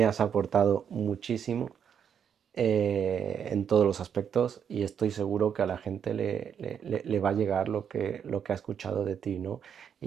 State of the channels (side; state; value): left; quieter; 7.9 dB